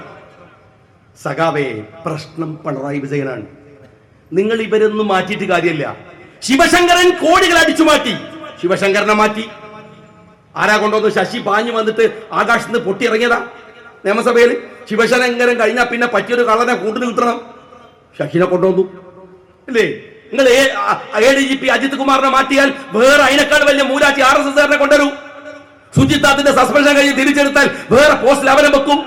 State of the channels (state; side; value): identical; both; correlation 1.00